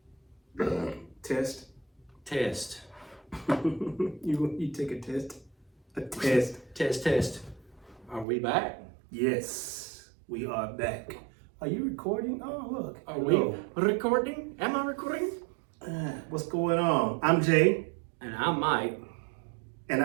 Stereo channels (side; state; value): left; drops out; at 8.2 s